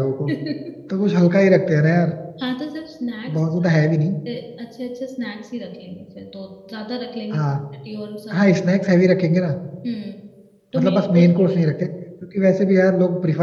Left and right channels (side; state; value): both; identical; correlation 1.00